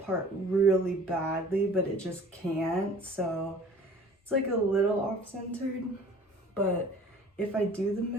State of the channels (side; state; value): both; normal; correlation 0.48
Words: really badly, but it just can't. So it's like a little off-centered, but if I do the